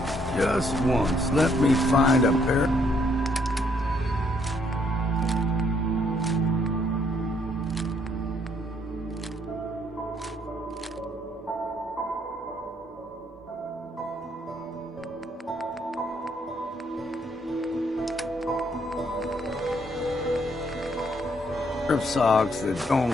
Just once, let me find a pair. Of socks that don't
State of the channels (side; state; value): both; normal; correlation 0.69